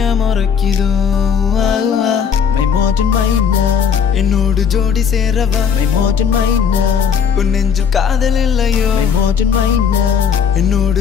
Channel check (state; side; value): quieter; right; 7.0 dB